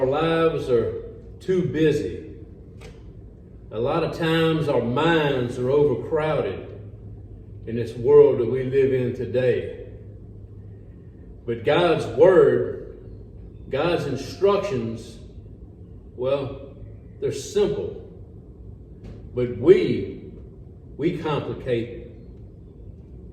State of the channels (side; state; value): both; identical; correlation 1.00